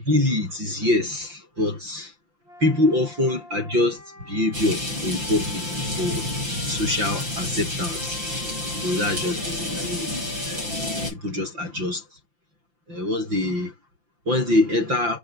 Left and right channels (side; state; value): left; late; 5.8 ms